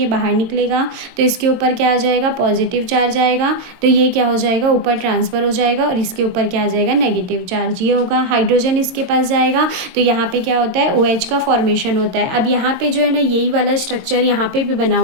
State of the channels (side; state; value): left; late; 22 ms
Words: बाहर निकलेगा, तो इसके ऊपर क्या आ जाएगा, पॉजिटिव चार्ज आएगा, तो ये क्या हो जाएगा, ऊपर ट्रांसफर हो जाएगा, और इसके ऊपर क्या आ जाएगा, नेगेटिव चार्ज। ये होगा, हाइड्रोजन इसके पास जाएगा, तो यहाँ पे क्या होता है, OH का फॉर्मेशन होता है। अब यहाँ पे जो है ना, यही वाला स्ट्रक्चर यहाँ पे भी बना